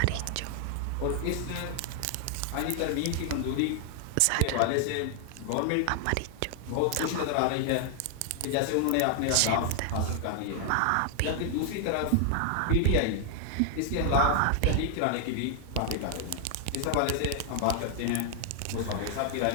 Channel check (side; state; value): both; different; correlation 0.00